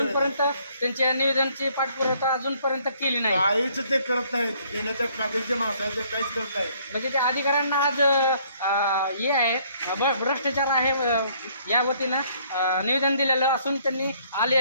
त्यांच्या निवेदनची पाठपुरावा अजूनपर्यंत केली नाही। काहीच ते करत नाहीत, देण्याच्या कागदचे माणसं आहेत, ते काहीच करत नाहीत। म्हणजे त्या अधिकाऱ्यांना आज हे आहे भ्रष्टाचार आहे या वतीनं निवेदन दिलेलं असून त्यांनी आले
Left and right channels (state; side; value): inverted; both; correlation -0.63